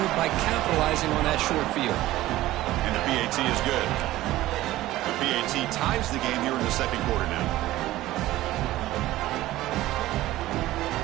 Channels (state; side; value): quieter; left; 16.1 dB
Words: by capitalizing on that short field. And the PAT is good. The PAT ties the game here in the 2nd quarter now.